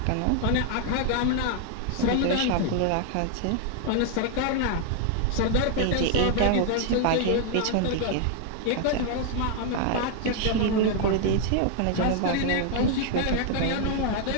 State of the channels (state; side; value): different; both; correlation 0.00